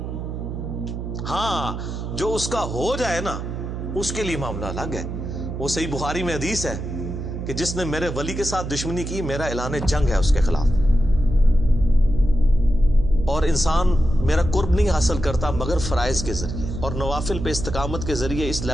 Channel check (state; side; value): noise; right; hum, 6 dB below the sound